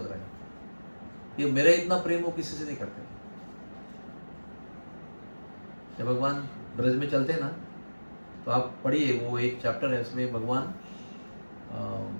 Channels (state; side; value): inverted; both; correlation -1.00